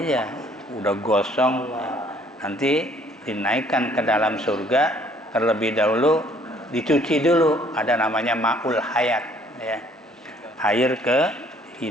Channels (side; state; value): both; normal; correlation 0.60